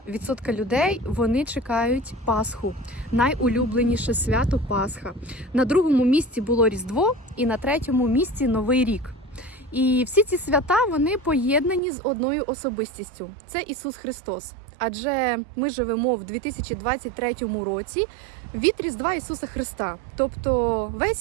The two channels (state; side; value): drops out; left; at 11.8 s